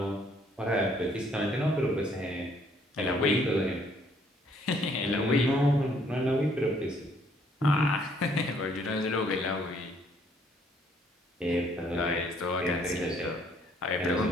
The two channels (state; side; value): normal; both; correlation 0.65